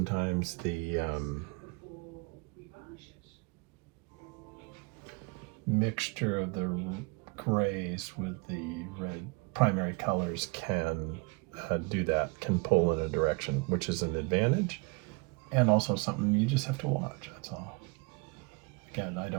the mixture of the grays with the red primary colors can do that, can pull in a direction, which is an advantage and also something you just have to watch. That's all. Again, I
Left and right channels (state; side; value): quieter; left; 29.3 dB